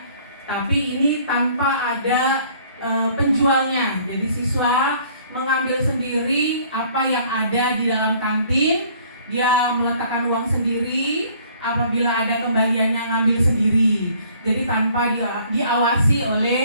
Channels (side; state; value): both; inverted; correlation -0.57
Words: tapi ini tanpa ada penjualnya. Jadi siswa mengambil sendiri apa yang ada di dalam kantin, dia meletakkan uang sendiri, apabila ada kembaliannya ngambil sendiri. Jadi tanpa diawasi